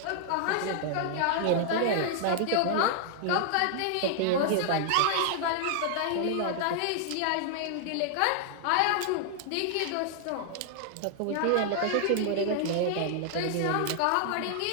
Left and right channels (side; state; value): both; different; correlation 0.00